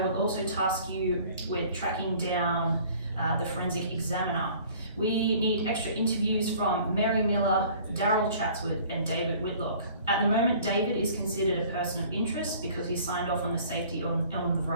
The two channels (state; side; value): inverted; both; correlation -0.51